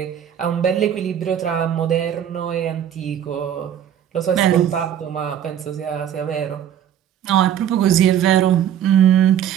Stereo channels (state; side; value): quieter; left; 9.9 dB